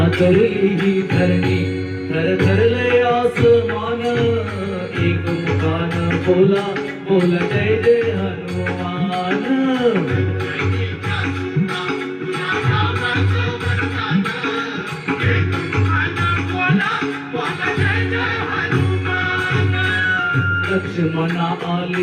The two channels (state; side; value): identical; both; correlation 1.00